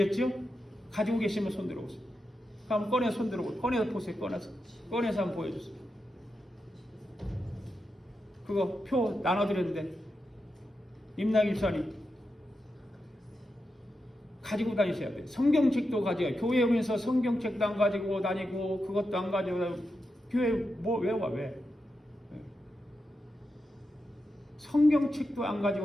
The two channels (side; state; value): both; normal; correlation 0.88